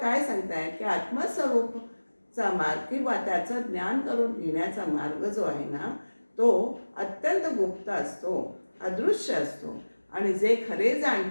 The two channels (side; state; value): both; inverted; correlation -1.00